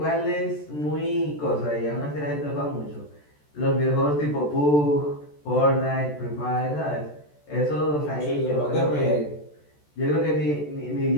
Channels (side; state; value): right; late; 14 ms